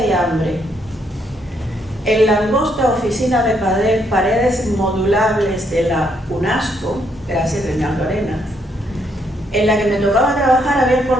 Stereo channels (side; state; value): both; normal; correlation 0.73